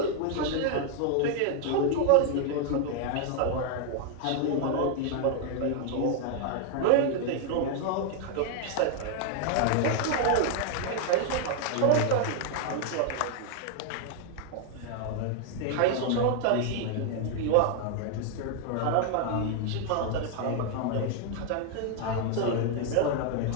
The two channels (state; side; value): different; both; correlation 0.00